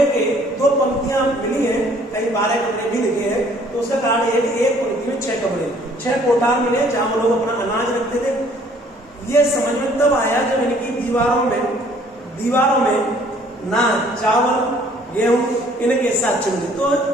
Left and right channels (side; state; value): both; normal; correlation 0.59